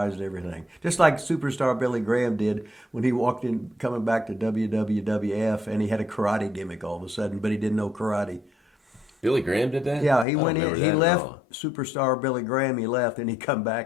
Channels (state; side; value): drops out; right; at 10.2 s